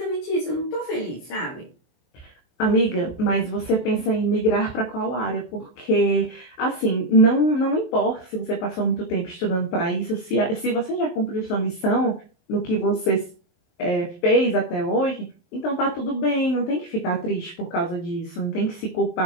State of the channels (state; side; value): late; right; 23 ms